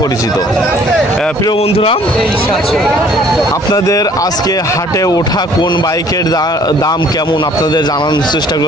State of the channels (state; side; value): normal; both; correlation 0.57